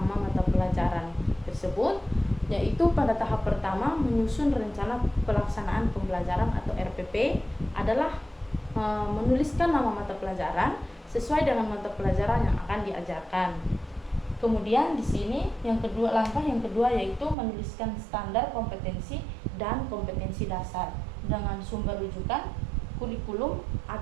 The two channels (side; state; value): left; drops out; at 17.4 s